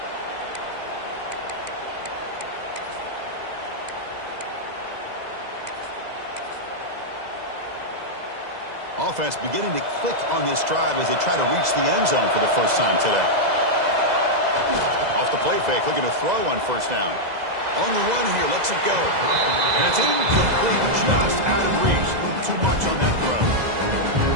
Offense beginning to click on this drive as they try to reach the end zone for the first time today. Off the play fake, looking to throw on first down. On the run here, lets it go. And it's incomplete.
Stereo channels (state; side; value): late; left; 2.0 ms